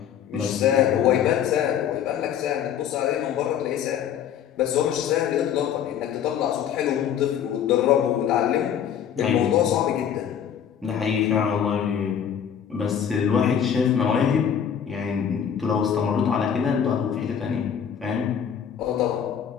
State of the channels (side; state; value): right; quieter; 8.7 dB